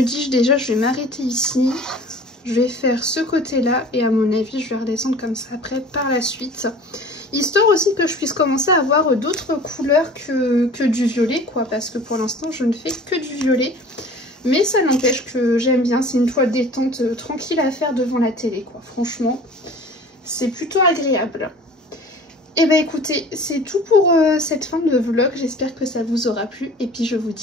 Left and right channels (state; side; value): normal; both; correlation 0.44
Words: dis déjà je vais m'arrêter ici. Je vais faire ce côté-là et à mon avis je vais redescendre comme ça après par la suite. Histoire aussi que je puisse commencer à avoir d'autres couleurs que du violet quoi, parce que pour l'instant je ne fais que du violet. Mais ça n'empêche que j'aime bien, c'est une toile détente tranquille à faire devant la télé quoi, franchement c'est plutôt agréable. Et bah écoutez, c'est tout pour cette fin de vlog, j'espère que ça vous aura plu et puis je vous